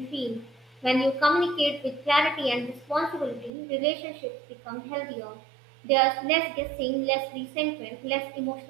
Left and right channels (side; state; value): left; drops out; at 3.5 s